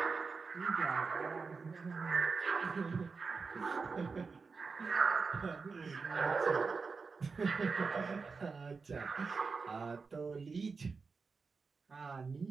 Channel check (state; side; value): quieter; left; 4.7 dB